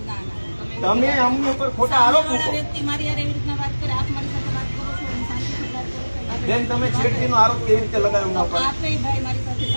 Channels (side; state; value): both; inverted; correlation -1.00